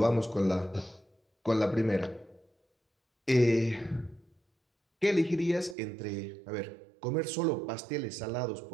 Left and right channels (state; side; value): drops out; left; at 5.8 s